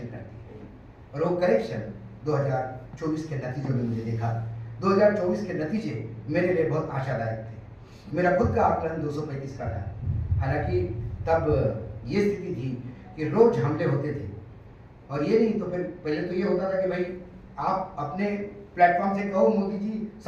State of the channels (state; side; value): identical; both; correlation 1.00